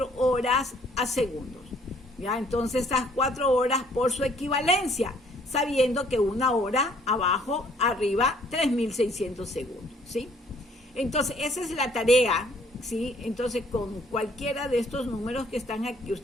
horas a segundos. ¿Ya? Entonces, estas 4 horas por su equivalencia, sabiendo que 1 hora abajo, arriba, 3600 segundos, ¿sí? Entonces, esa es la tarea, ¿sí? Entonces, con cualquiera de estos números que están aquí,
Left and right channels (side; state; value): both; normal; correlation 0.62